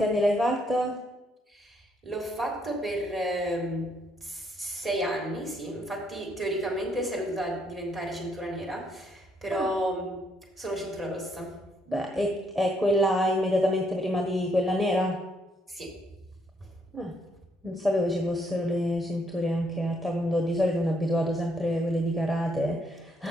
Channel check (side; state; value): both; normal; correlation 0.72